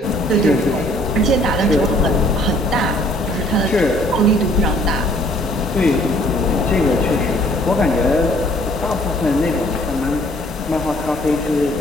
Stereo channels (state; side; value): normal; both; correlation 0.59